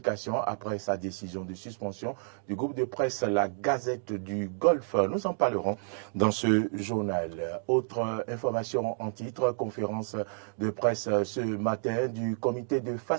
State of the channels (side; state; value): left; silent; digital silence